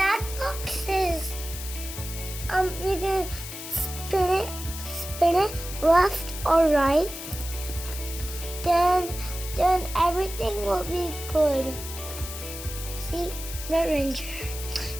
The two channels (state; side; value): noise; left; hiss, 9 dB below the sound